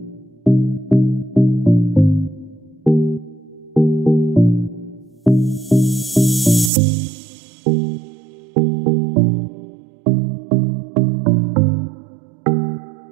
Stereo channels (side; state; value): left; drops out; at 6.7 s